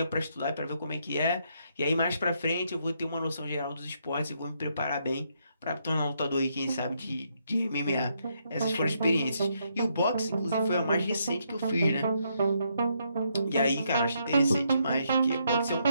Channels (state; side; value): inverted; both; correlation -0.76